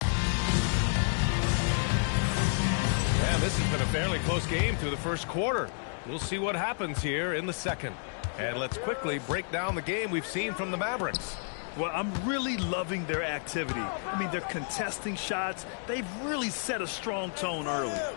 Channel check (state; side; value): silent; right; 58 dB below the other